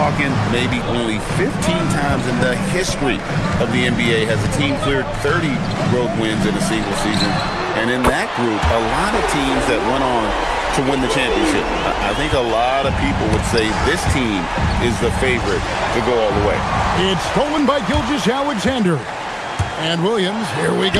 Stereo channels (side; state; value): both; identical; correlation 1.00